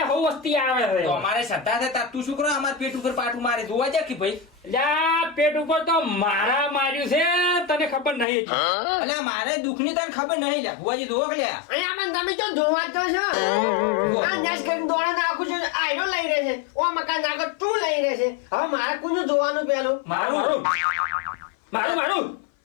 હવ વસ્તી આવે છે તો અમારે શ્રદ્ધા છે તાર તું શું કરો અમાર પેટ ઉપર પાટું મારે જોવા જા કે ભાઈ એટલે આ પેટ ઉપર તો મારા માર્યું છે તને ખબર નહીં અલ્યા મારે દુઃખની તને ખબર નહીં લ્યા ભુવાજી જોવો કે લ્યા અહીંયા મને તમે તો જોવા જ તો છો આ નેસ કરીને દોડા નાખું છું આયરો લઈ રહે છે ઓ મકાન નાખો તું લઈ રહે છે હવે મારે કોનું જોવાનું પેલું મારું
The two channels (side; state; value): right; drops out; at 8.2 s